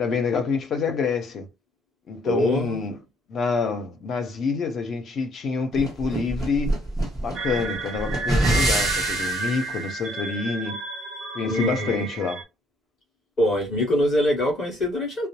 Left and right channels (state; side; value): normal; both; correlation 0.65